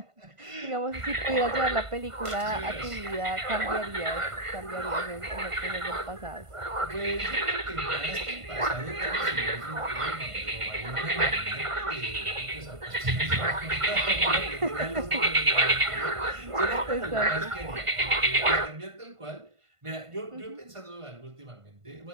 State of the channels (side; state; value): left; late; 1.5 ms